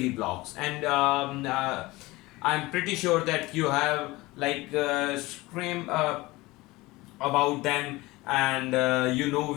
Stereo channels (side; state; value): right; quieter; 20.7 dB